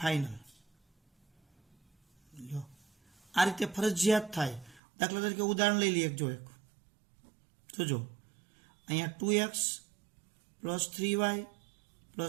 ફાઇનલ. આ રીતે ફરજિયાત થાય. દાખલા તરીકે ઉદાહરણ લઈ લઈએ. જોજો અહીંયા 2x પ્લસ 3y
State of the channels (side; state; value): left; drops out; at 4.8 s